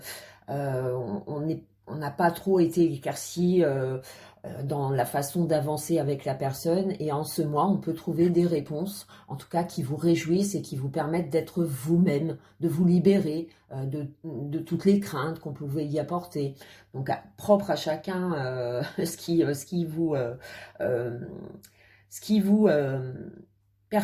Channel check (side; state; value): both; identical; correlation 1.00